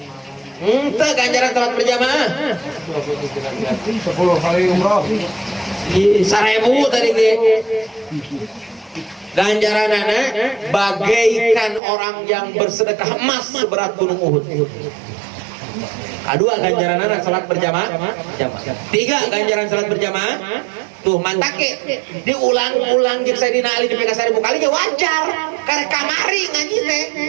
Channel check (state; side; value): drops out; left; at 11.8 s